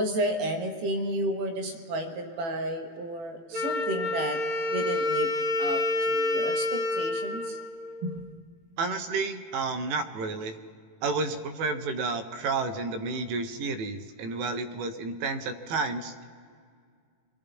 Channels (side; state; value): left; late; 18 ms